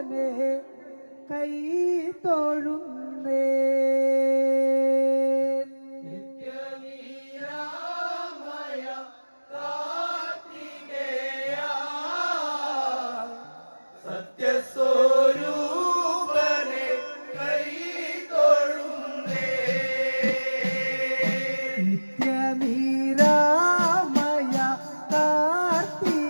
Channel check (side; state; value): both; inverted; correlation -1.00